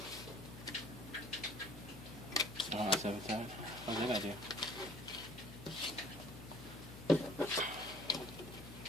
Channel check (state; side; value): noise; left; hum, 15 dB below the sound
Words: Oh, that's every time. What did I do?